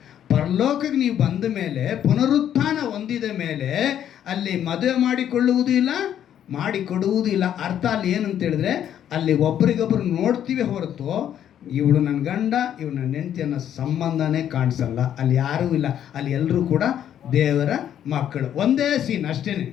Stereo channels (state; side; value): quieter; right; 10.1 dB